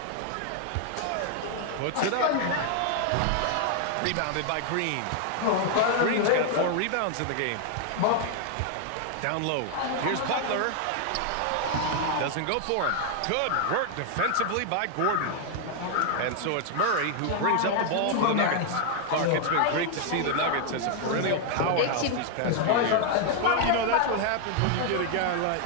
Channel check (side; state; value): both; different; correlation 0.00